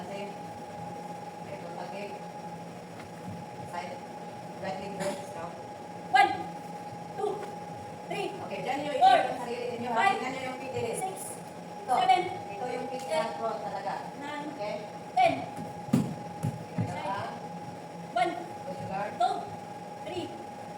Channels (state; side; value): identical; both; correlation 1.00